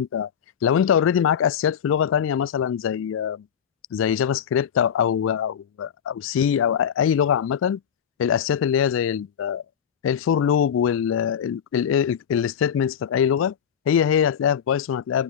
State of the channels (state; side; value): quieter; right; 8.2 dB